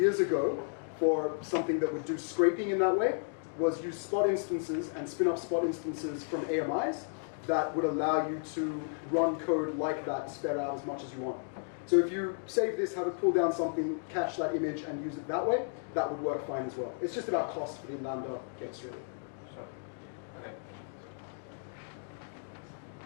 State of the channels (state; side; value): silent; right; digital silence